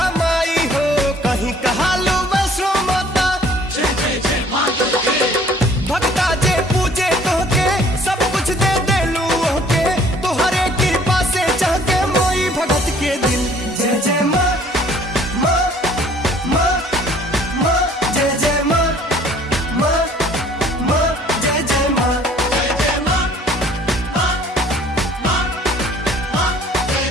माई हो, कहीं कहालू वैष्णो माता। भक्ता जे पूजे तोहके सब कुछ दे देलू ओहके, तोहरे कृपा से चहके मोई भगत के दिल। जय जय माँ माँ माँ माँ, जय जय माँ माँ माँ, जय जय माँ। जय जय माँ माँ माँ माँ, जय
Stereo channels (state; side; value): normal; both; correlation 0.55